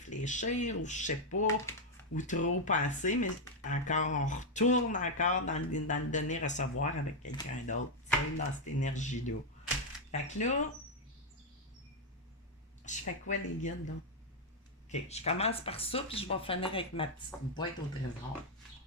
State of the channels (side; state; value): both; normal; correlation 0.00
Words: ou je sais pas, ou trop penser, mais encore, on retourne encore dans le donner-recevoir avec quelqu'un d'autre, tu sais, dans cette énergie-là. Fait que là, je fais quoi les guides, là? OK, je commence par ça, puis je vais finir avec ma petite boîte au trésor.